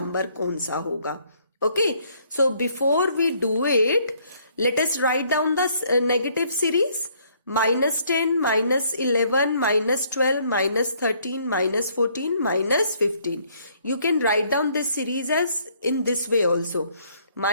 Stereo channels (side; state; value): both; inverted; correlation -0.65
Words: कौन सा होगा. Okay. So before we do it, let us write down the negative series. Minus 10, minus 11, minus 12, minus 13, minus 14, minus 15. You can write down this series as in this way also.